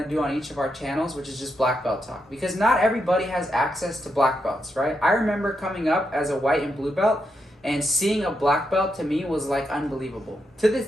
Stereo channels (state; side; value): normal; both; correlation 0.82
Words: to do on each of our channels, which is just black belt talk. Because not everybody has access to black belts, right? I remember coming up as a white and blue belt, and seeing a black belt to me was like unbelievable. To this